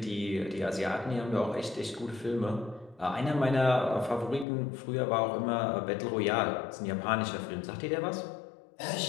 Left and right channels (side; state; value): right; drops out; at 4.5 s